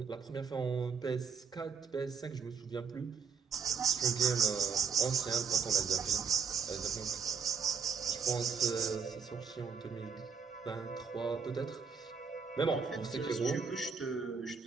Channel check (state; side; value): quieter; left; 5.9 dB